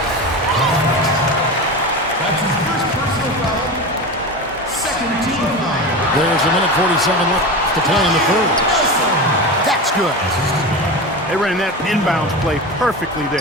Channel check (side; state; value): both; normal; correlation 0.26